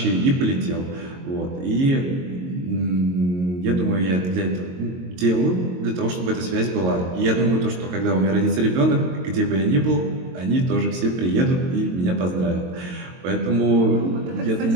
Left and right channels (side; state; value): left; late; 22 ms